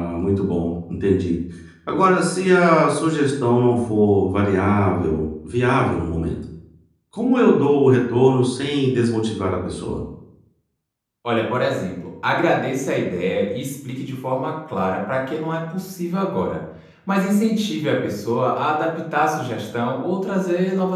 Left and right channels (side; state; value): both; identical; correlation 1.00